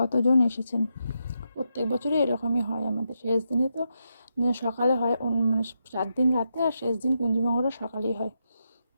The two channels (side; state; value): both; inverted; correlation -0.84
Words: এসেছেন। প্রত্যেক বছরই এরকমই হয় আমাদের, শেষ দিনে তো সকালে হয়, মানে 4 দিন রাতে আর শেষ দিন কুঞ্জমঙ্গলটা সকালেই হয়।